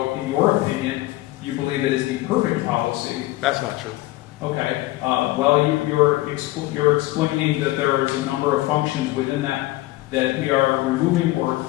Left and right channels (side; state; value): right; quieter; 18.2 dB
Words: in your opinion, you believe it is the perfect policy. That's not true. Okay, well, you're explaining that there is a number of functions within that we are removing or